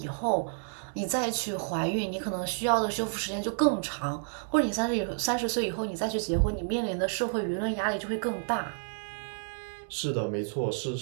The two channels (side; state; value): left; silent; digital silence